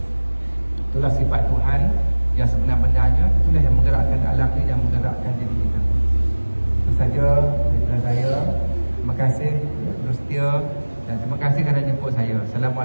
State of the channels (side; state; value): both; inverted; correlation -1.00